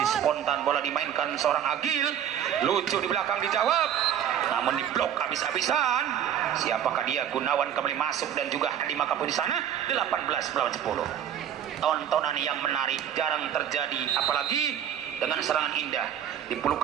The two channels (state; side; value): quieter; left; 9.9 dB